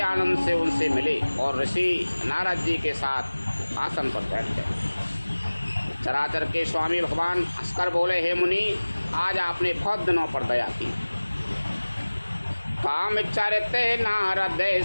आनंद से उनसे मिले और ऋषि नारद जी के साथ आसन पर बैठ गए। चराचर के स्वामी भगवान हंसकर बोले, हे मुनि, आज आपने बहुत दिनों पर दया की। काम चरते नारद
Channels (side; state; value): both; inverted; correlation -1.00